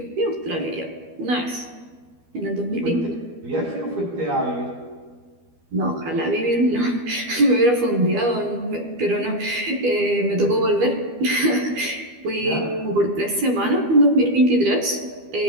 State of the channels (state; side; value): late; left; 12 ms